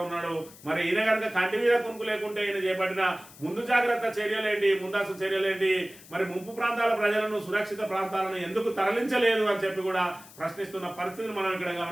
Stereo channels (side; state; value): left; noise; hiss, 20 dB below the sound